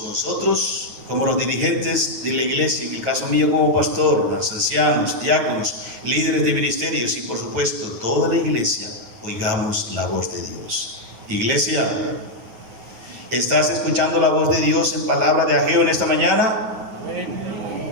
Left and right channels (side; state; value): left; late; 9.4 ms